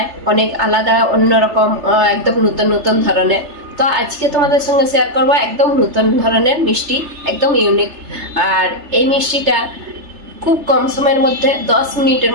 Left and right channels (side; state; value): left; late; 3.3 ms